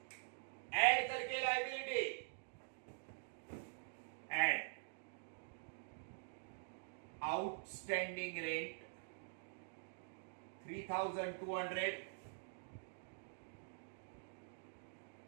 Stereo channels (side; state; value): left; silent; digital silence